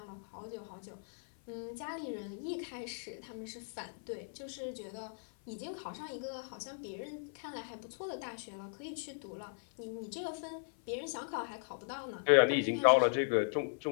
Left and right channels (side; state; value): right; silent; 53 dB below the other